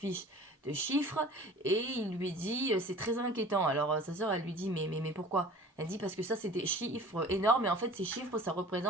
de chiffres et il lui dit c'est très inquiétant. Alors sa sœur elle lui dit mais pourquoi? Elle dit parce que ça c'est des chiffres énormes et en fait ces chiffres ça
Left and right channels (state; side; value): normal; both; correlation 0.44